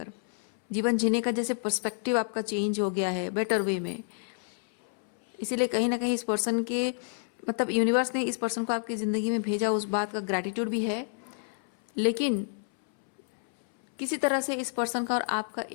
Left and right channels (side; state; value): right; silent; 59 dB below the other